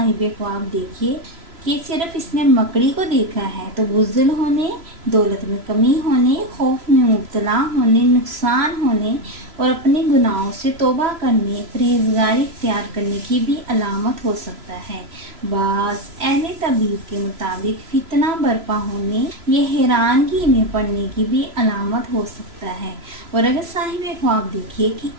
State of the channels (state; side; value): late; left; 3.0 ms